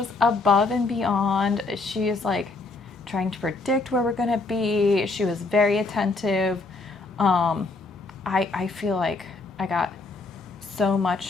above and beyond. She is like trying to predict where we're going to be. She was very attentive. I feel like I got so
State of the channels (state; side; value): quieter; right; 3.6 dB